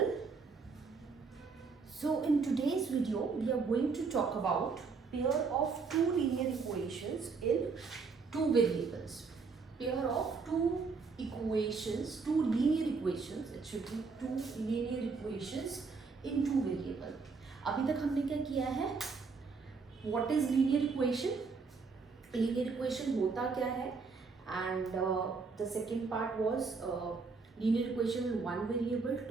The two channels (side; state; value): left; quieter; 4.7 dB